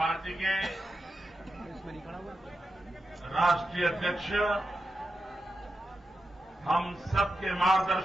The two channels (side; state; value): both; normal; correlation 0.89